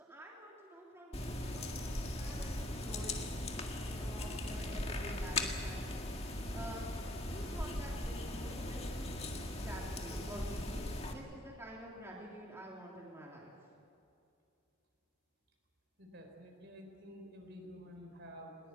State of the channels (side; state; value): both; normal; correlation 0.64